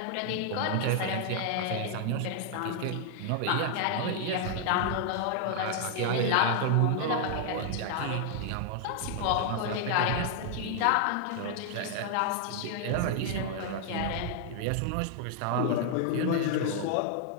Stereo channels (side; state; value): both; different; correlation 0.00